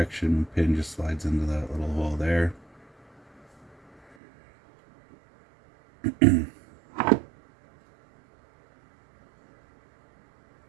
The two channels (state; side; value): drops out; left; at 4.2 s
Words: pin just slides into that little hole there.